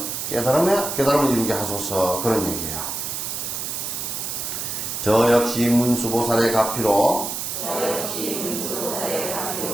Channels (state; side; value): noise; right; hiss, 4 dB below the sound